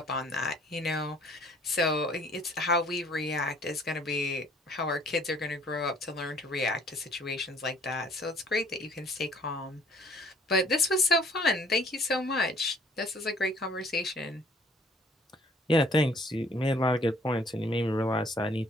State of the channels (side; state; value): both; normal; correlation 0.58